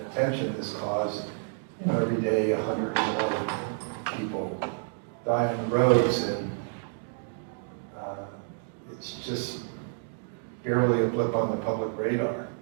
attention this caused, you know, every day 100 or more people die on the roads, and it's just barely a blip on the public radar.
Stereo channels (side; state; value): left; silent; digital silence